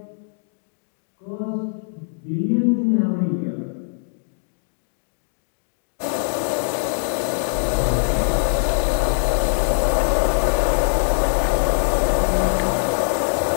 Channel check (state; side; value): silent; right; digital silence